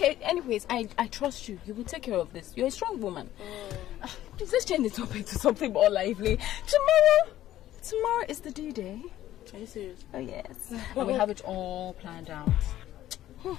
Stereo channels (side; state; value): right; quieter; 13.4 dB